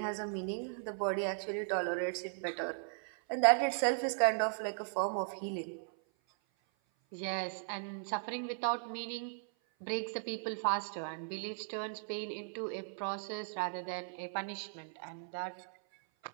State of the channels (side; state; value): left; silent; 53 dB below the other